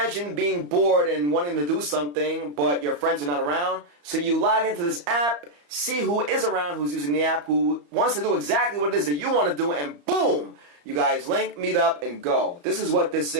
being bored and wanting to do something, but your friends are not around. So you log into this app, see who is around, who's using the app, who wants to do exactly what it is that you want to do, and boom! You guys link, meet up, and go. This is what this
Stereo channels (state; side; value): late; left; 34 ms